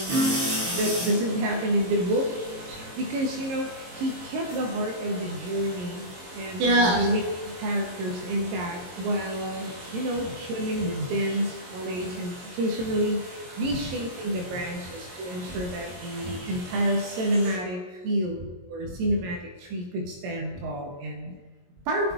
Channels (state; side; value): late; left; 22 ms